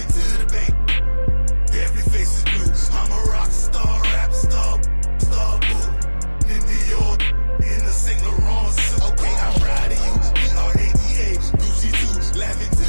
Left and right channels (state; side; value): inverted; both; correlation -1.00